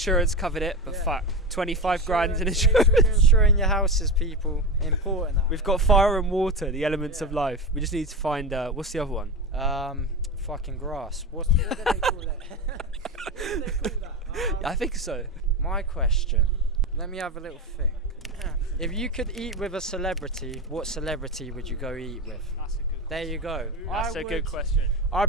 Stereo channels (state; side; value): normal; both; correlation 0.21